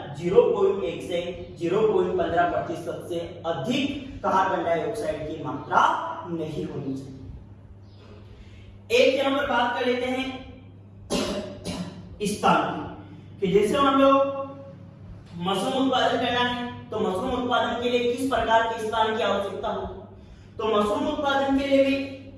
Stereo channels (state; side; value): identical; both; correlation 1.00